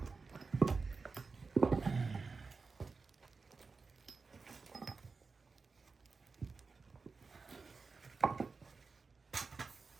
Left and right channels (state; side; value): quieter; left; 4.4 dB